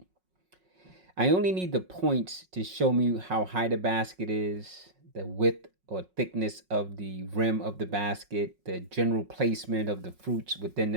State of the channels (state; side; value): late; left; 5.4 ms